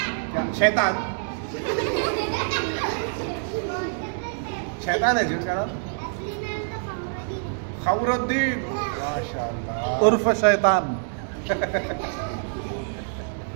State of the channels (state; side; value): silent; left; digital silence